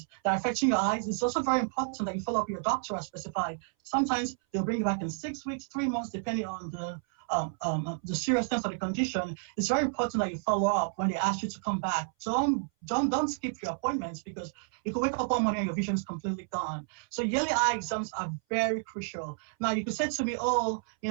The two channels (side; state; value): left; silent; 57 dB below the other